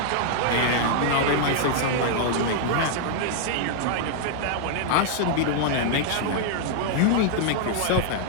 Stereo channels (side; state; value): both; different; correlation -0.01